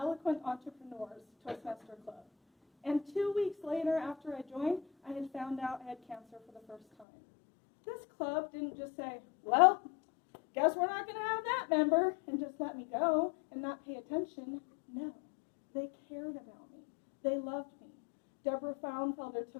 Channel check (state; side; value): drops out; right; at 7.1 s